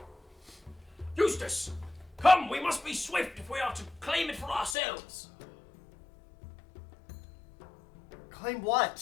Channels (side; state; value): right; drops out; at 4.8 s